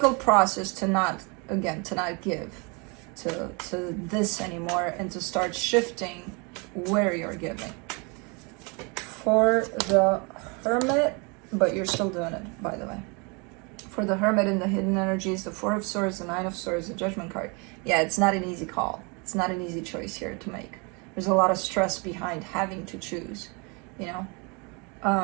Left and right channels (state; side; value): quieter; left; 31.5 dB